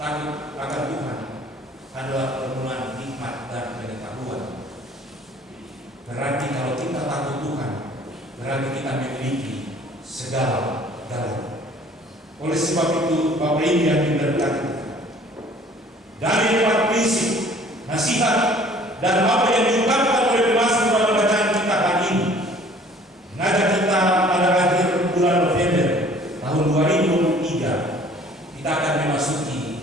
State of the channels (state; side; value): normal; both; correlation 0.53